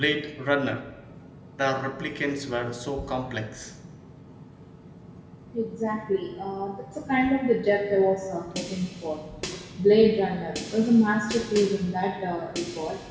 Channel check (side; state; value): both; identical; correlation 1.00